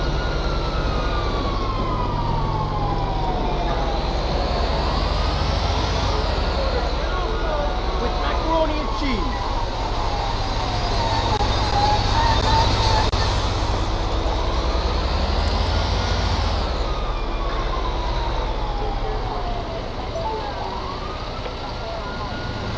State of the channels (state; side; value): identical; both; correlation 1.00